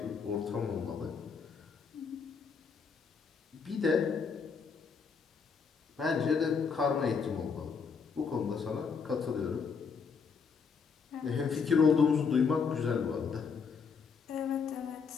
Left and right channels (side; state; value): right; quieter; 5.7 dB